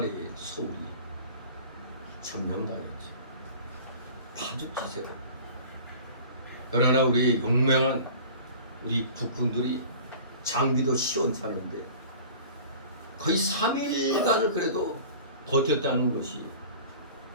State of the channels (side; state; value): both; inverted; correlation -0.43